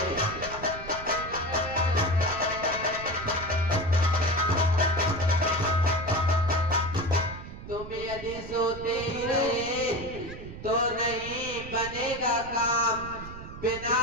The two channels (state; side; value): noise; right; rumble, 12 dB below the sound